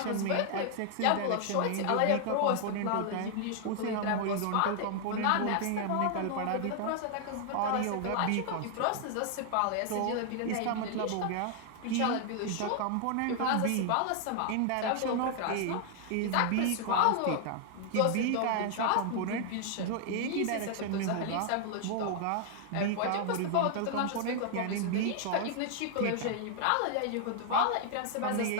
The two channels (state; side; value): different; both; correlation 0.00